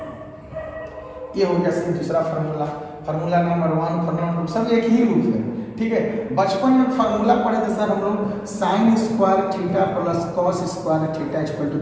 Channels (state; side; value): identical; both; correlation 1.00